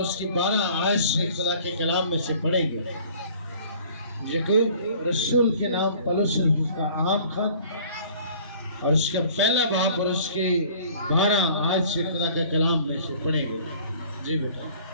کی 12 آیت سے خدا کے کلام میں سے پڑھیں گے۔ یعقوب رسول کے نام پولس کا عام خط اور اس کا پہلا باب اور اس کی 12 آیت سے خدا کے کلام میں سے پڑھیں گے۔ جی بیٹا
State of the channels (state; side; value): inverted; both; correlation -0.52